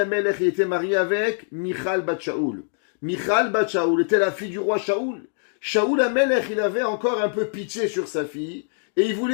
était marié avec Michal bat Shaoul. Michal bat Shaoul était la fille du roi Shaoul. Shaoul Amelech il avait encore un peu pitié sur sa fille et il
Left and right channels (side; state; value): right; silent; digital silence